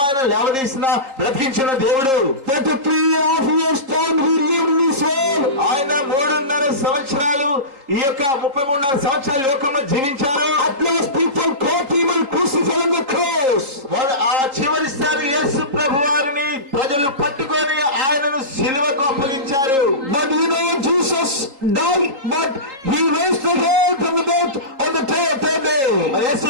ఆయన లేవదీసిన బ్రతికించిన దేవుడు. 33.5 years time he lived in this world. ఆయన 3.5 ఈ యొక్క 33.5 సంవత్సరాల లోకంలో జీవించారు. At last people caught him and crucified on the cross. వారు ఆ చివరిసారి యేసు ప్రభు వారిని ప్రజలు పట్టుకొని ఆయనను సిలువకు అప్పగించారు. But you know, Jesus died, but he raised again from the death on the third day. యేసు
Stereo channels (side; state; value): left; late; 3.8 ms